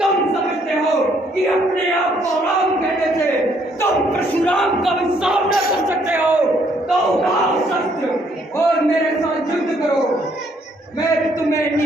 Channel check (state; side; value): normal; both; correlation 0.68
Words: तुम समझते हो कि अपने आप को राम कहने से तुम परशुराम का भी सामना कर सकते हो, तो उठाओ शस्त्र और मेरे साथ युद्ध करो। मैं तुम्हें